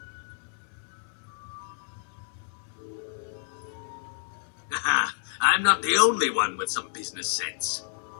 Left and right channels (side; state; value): right; silent; 58 dB below the other